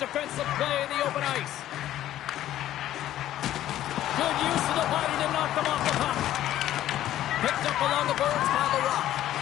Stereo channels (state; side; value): quieter; right; 12.9 dB